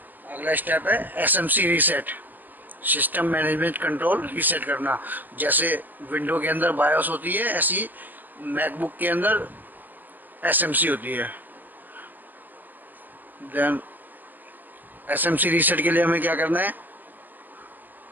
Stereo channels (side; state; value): left; late; 0.086 ms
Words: अगला स्टेप है SMC reset, system management control reset करना। जैसे विंडो के अंदर बायोस होती है, ऐसी मैकबुक के अंदर SMC होती है। देन SMC रीसेट के लिए हमें क्या करना है,